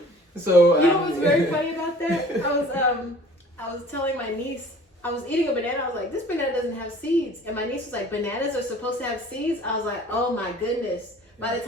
So you know what's very funny about that? I was telling my niece, I was eating a banana. I was like, this banana doesn't have seeds. And my niece was like, bananas are supposed to have seeds? I was like, oh my goodness. By the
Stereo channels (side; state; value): both; normal; correlation 0.49